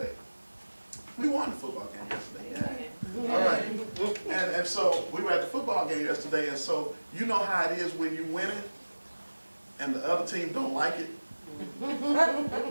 We won the football game yesterday. Yeah. All right. And so we were at the football game yesterday, and so you know how it is when you win it and the other team don't like it.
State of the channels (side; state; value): both; inverted; correlation -1.00